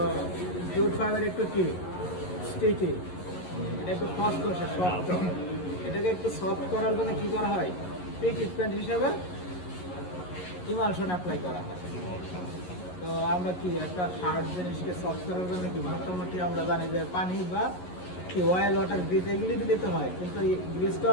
জুট ফাইবার একটু কি স্টিকি, এটা একটু খসখসে সফট, এটাকে একটু সফট করার জন্য কি করা হয়, ট্রিটমেন্ট হিসেবে ইমালশন অ্যাপ্লাই করা হয়। তো আমরা কি একটা হার্ড জিনিসকে সফট করার জন্য কি মোটামুটি আমরা জানি যে পানি বা কি অয়েল, ওয়াটার, গ্রিস এগুলি দিতে হয়, কিন্তু এই গ্রিস তো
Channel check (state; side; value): late; right; 11 ms